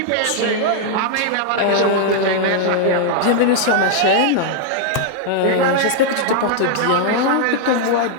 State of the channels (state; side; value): different; both; correlation 0.00